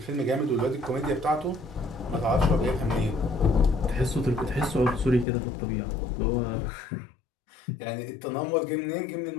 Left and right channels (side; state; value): right; drops out; at 5.2 s